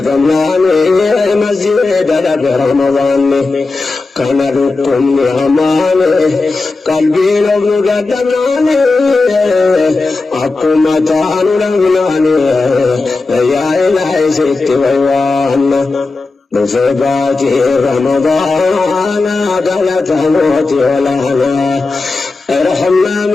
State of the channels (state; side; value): quieter; right; 3.6 dB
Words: مسجد رمضان كان لكم نعماني قلبي لو قدماني حكومتان لغناني يا إلهي ست ويوانا بفبات رمضان قالت موتي ولانا ارحمنا